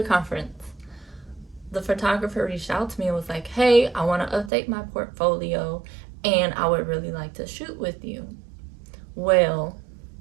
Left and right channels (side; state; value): left; drops out; at 4.5 s